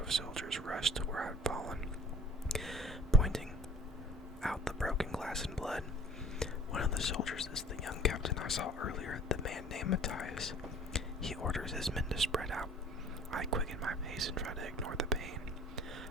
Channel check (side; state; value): both; normal; correlation 0.48